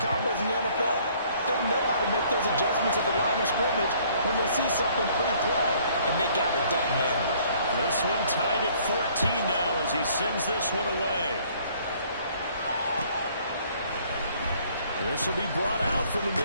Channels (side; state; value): both; inverted; correlation -0.60